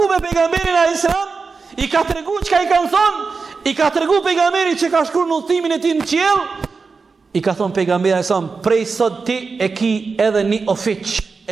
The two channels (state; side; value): quieter; left; 4.6 dB